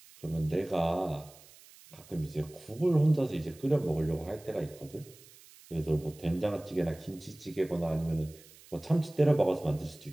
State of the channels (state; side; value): noise; right; hiss, 23 dB below the sound